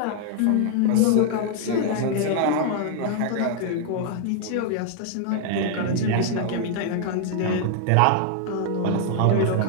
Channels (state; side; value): different; both; correlation 0.00